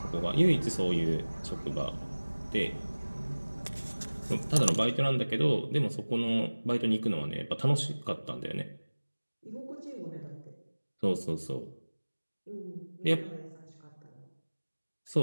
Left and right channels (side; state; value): both; inverted; correlation -1.00